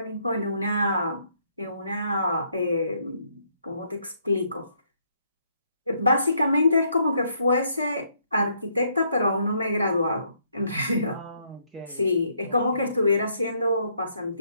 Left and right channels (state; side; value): inverted; both; correlation -0.71